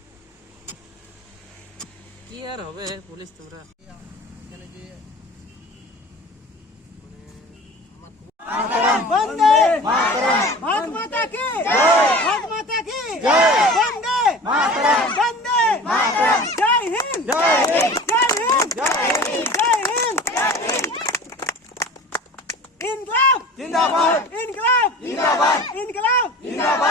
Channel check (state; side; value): normal; both; correlation 0.39